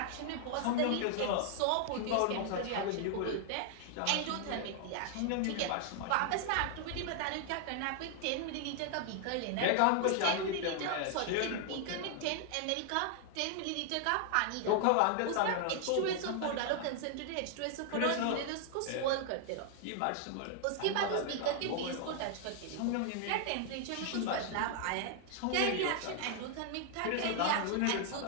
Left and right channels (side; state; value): both; different; correlation 0.00